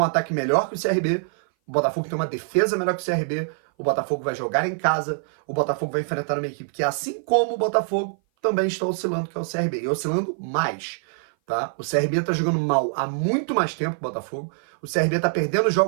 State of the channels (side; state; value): left; silent; 57 dB below the other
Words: ataque melhor que o CRB. O Botafogo tem uma defesa melhor que o CRB. O Botafogo vai jogar em casa. O Botafogo vai enfrentar uma equipe que, assim como o Botafogo, também está oscilando, que é o CRB. E oscilando mais, tá? O CRB está jogando mal há muito mais tempo que o Botafogo. O CRB está perdendo